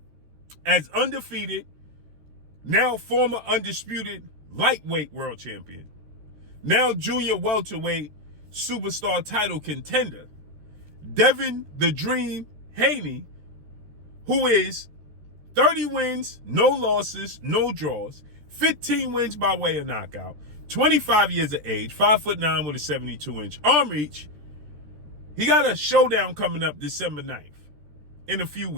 As undefeated, now former undisputed lightweight world champion, now junior welterweight superstar title contender, Devin the Dream Haney, who is 30 wins, no losses, no draws, 15 wins by way of knockout, 25 years of age, 5'9" with a 72-inch arm reach. He got a showdown coming up December 9th in a few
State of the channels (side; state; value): left; late; 13 ms